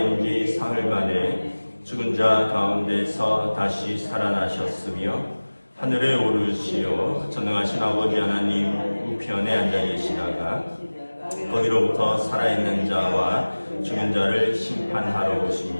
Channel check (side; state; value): both; inverted; correlation -1.00